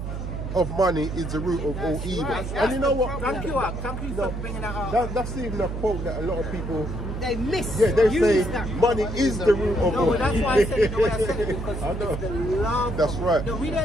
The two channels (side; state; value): right; noise; hum, 6 dB below the sound